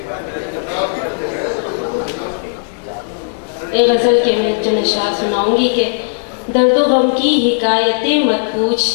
ایک غزل کے میں چند اشعار سناؤں گی کہ درد و غم کی حکایتیں مت پوچھ،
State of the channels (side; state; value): right; silent; digital silence